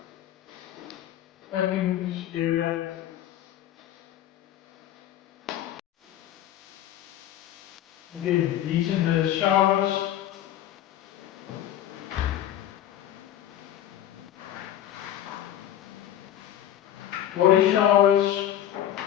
Packing area. Again, these are the showers. Body showers.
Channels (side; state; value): right; quieter; 11.7 dB